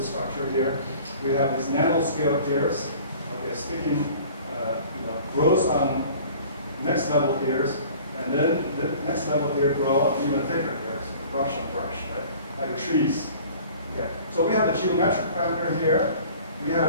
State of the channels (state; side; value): inverted; both; correlation -0.47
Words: here. We have these nanoscale hairs, okay, sticking grows on next level hairs, and then the next level here grow on even thicker hairs, brush on brush, right? Like trees. Okay. So we have the geometric parameter here. We